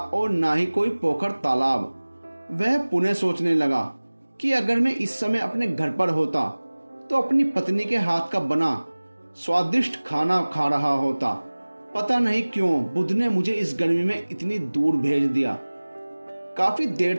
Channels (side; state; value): both; inverted; correlation -1.00